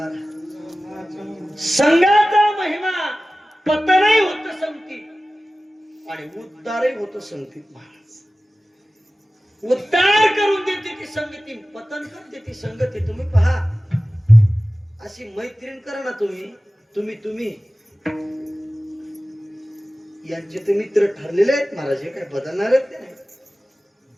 संघाचा महिमा. पतनही होत संगतीत आणि उद्धारही होत संगतीत महाराज. उद्धार करून देते ती संगती, पतन करून देते संगती. तुम्ही पहा, अशी मैत्रीण करा ना तुम्ही यांचे ते मित्र ठरलेले आहेत महाराज, हे काय बदलणार आहेत नाही.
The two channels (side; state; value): both; normal; correlation 0.96